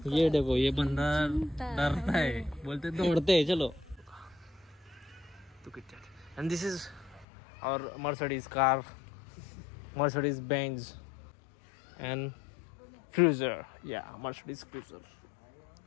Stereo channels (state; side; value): drops out; right; at 7.2 s